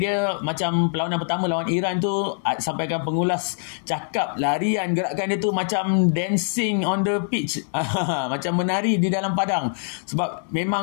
dia. Macam perlawanan pertama lawan Iran tu, sampai sampaikan pengulas cakap, larian, gerakan dia tu macam dancing on the pitch. Macam menari di dalam padang. Sebab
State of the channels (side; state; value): right; silent; 63 dB below the other